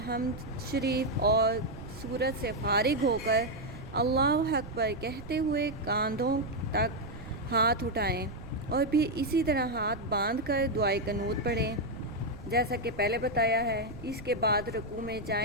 شریف اور سورت سے فارغ ہو کر اللہ اکبر کہتے ہوئے کاندھوں تک ہاتھ اٹھائیں اور پھر اسی طرح ہاتھ باندھ کر دعائے قنوت پڑھیں جیسا کہ پہلے بتایا ہے۔ اس کے بعد رکوع میں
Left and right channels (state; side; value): noise; right; rumble, 15 dB below the sound